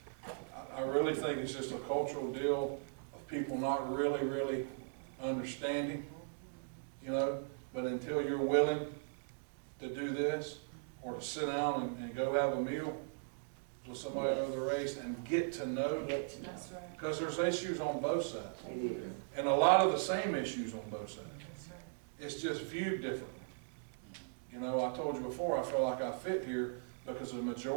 I really think it's just a cultural deal of people not really understanding, you know, but until you're willing to do this, or to sit down and go have a meal with somebody of the race and get to know. That's right. Because there's issues on both sides. It is. And a lot of the same issues on both sides. That's right. It's just viewed differently. You know, I told you before, I feel like I fit here because the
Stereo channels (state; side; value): silent; left; digital silence